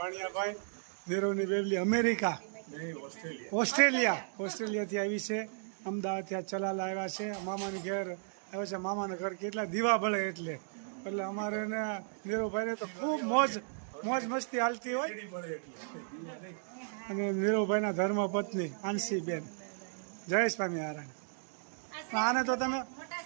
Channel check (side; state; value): left; silent; digital silence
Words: નીરુની બેબલી અમેરિકા ઓસ્ટ્રેલિયાથી આવી છે. અમદાવાદથી આ ચલાલા આવ્યા છે, મામાની ઘેર આવ્યા છે. મામાના ઘર કેટલા દીવા બળે એટલે અમારે ને નીરુભાઈને તો ખૂબ મોજ મસ્તી હાલતી હોય. અને નીરુભાઈના ધર્મપત્ની આંશીબેન. જય સ્વામિનારાયણ. આને તો તમે